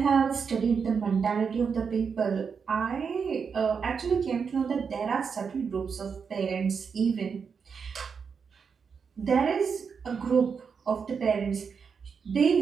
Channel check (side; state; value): left; quieter; 6.0 dB